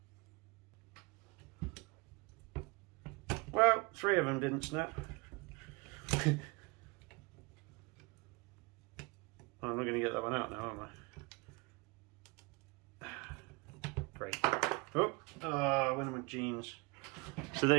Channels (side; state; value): left; quieter; 27.0 dB